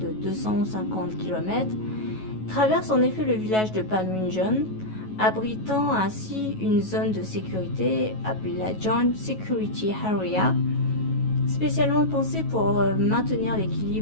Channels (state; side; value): late; right; 9.3 ms